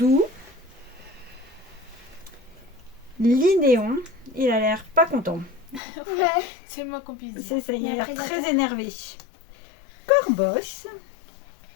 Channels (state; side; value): drops out; right; at 5.8 s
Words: Linéon. Il a l'air pas content. Ouais. C'est le moins qu'on puisse dire. C'est ça, il a Un l'air prédateur. très énervé. Corboss.